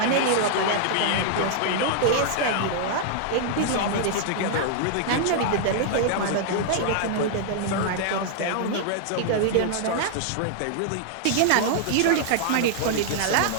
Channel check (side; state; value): both; different; correlation -0.01